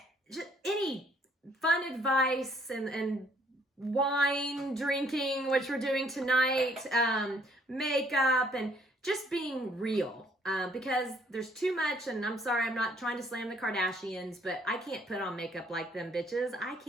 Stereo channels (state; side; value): normal; both; correlation 0.64